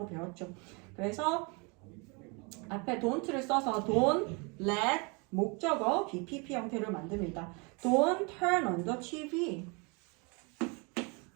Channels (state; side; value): quieter; left; 31.4 dB